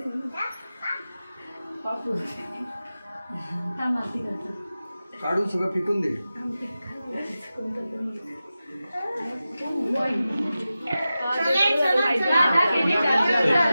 काढून सगळं फिकून दे.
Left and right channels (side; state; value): both; inverted; correlation -0.94